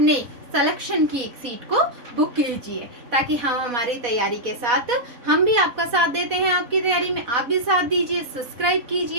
सिलेक्शन की एक सीट को बुक कीजिए, ताकि हम हमारी तैयारी के साथ हम भी आपका साथ देते हैं। आपकी तैयारी में आप भी साथ दीजिए, सब्सक्राइब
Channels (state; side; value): late; left; 4.1 ms